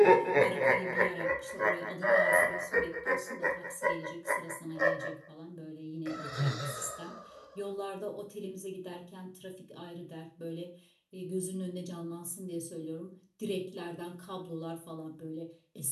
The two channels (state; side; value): identical; both; correlation 1.00